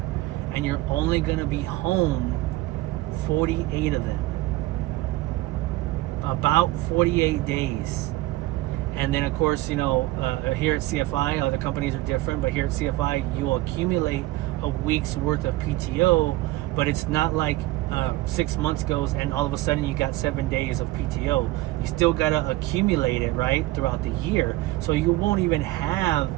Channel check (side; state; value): left; quieter; 17.9 dB